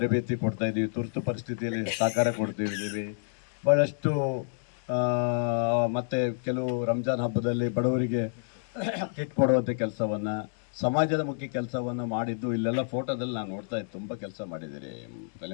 ಕೊಡ್ತಾ ಇದ್ದೀವಿ, ತುರ್ತು ಪರಿಸ್ಥಿತಿಯಲ್ಲಿ ಸಹಕಾರ ಕೊಡ್ತಿದ್ದೀವಿ, ಭಾಳಷ್ಟು ಮತ್ತು ಕೆಲವು ರಂಜಾನ್ ಹಬ್ಬದಲ್ಲಿ ಬಡವರಿಗೆ ಕಿಟ್ ಕೊಡುವಂಥ ಕೆಲಸವನ್ನು, ಸಮಾಜದ ಮುಖ್ಯ ಕೆಲಸವನ್ನು ಮಾಡಿದ್ದು ಇಲ್ಲೆಲ್ಲ ಫೋಟೋದಲ್ಲಿ ನಾನು ನೋಡ್ತಾ ಇದ್ದೆ. ತುಂಬ ಕೆಲಸ ಮಾಡಿದ್ದೀರಿ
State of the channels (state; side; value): silent; right; digital silence